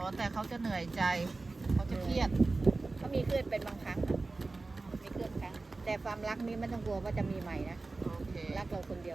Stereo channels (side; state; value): left; quieter; 3.5 dB